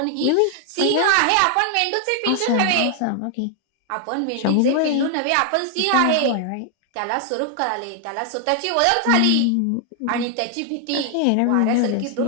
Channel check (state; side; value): different; both; correlation 0.00